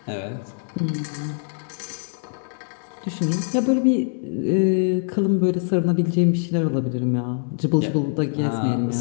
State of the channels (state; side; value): silent; right; digital silence